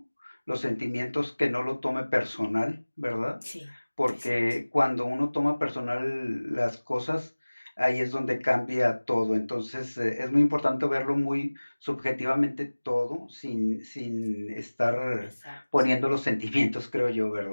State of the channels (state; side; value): inverted; both; correlation -1.00